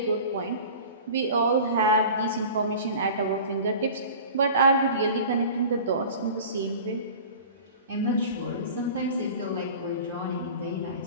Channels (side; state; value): both; inverted; correlation -0.39